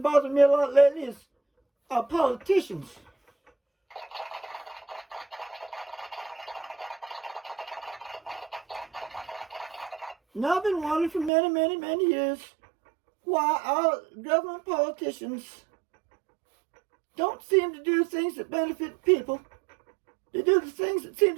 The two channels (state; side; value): drops out; left; at 11.3 s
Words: bothering me a lot lately is our politicians. Now I've been wondering for many, many, many years why our government politicians don't seem to do things that benefit people. They do the things that seem